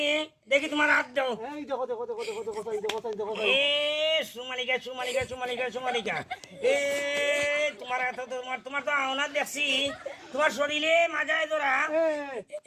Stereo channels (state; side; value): identical; both; correlation 1.00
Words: দেখি তোমার হাত দাও। এই দেখো দেখো দেখো দেখো দেখো চাই দেখো চাই দেখো চাই। এ সুমালিকা সুমালিকা সুমালিকা সুমালিকা, এ তোমার হাত, তোমার তোমার তো আওনা দেখছি, তোমার শরীরে মাজায় ধরা,